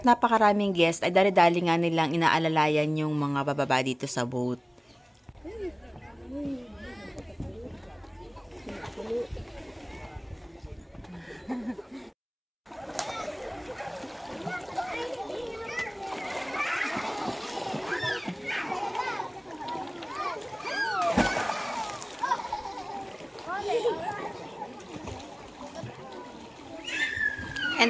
napakaraming guest ay dali-dali nga nilang inaalalayan yung mga bababa dito sa boat. And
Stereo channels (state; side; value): identical; both; correlation 1.00